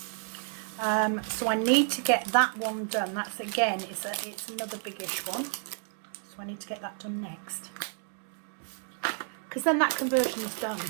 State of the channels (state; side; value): silent; left; 57 dB below the other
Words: So I need to get that one done. That's, again, it's another biggish one. So I need to get that done next, because then that conversion is done,